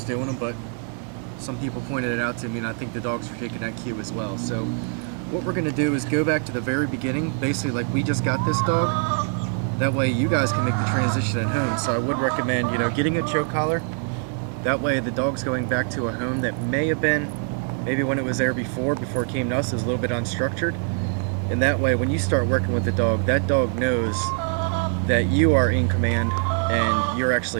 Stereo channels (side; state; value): left; quieter; 39.4 dB